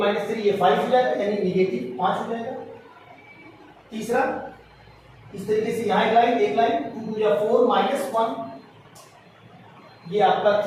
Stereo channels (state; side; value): identical; both; correlation 1.00